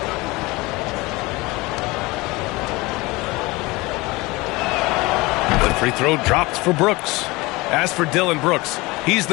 The free throw dropped for Brooks. As for Dillon Brooks, he's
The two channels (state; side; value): quieter; right; 22.7 dB